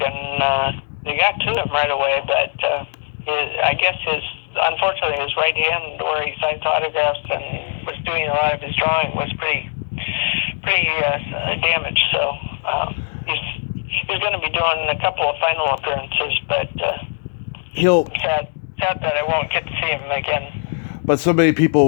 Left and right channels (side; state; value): right; silent; digital silence